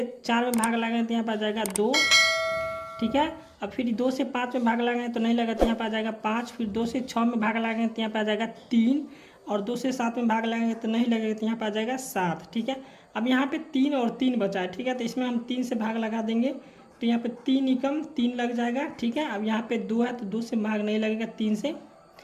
4 में भाग लगाएंगे तो यहाँ पर आ जाएगा 2। ठीक है, अब फिर 2 से 5 में भाग लगाएंगे तो नहीं लगा तो यहाँ पर आ जाएगा 5। फिर 2 से 6 में भाग लगाएंगे तो यहाँ पर आ जाएगा 3, और 2 से 7 में भाग लगाएंगे तो नहीं लगेगा तो यहाँ पर आ जाएगा 7। ठीक है, अब यहाँ पे 3 और 3 बचा है। ठीक है, तो इसमें हम 3 से भाग लगा देंगे तो यहाँ पे 3 एकम 3 लग जाएगा। ठीक है, अब यहाँ पे 2 है तो 2 से भाग नहीं लगेगा 3 से।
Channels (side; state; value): both; identical; correlation 1.00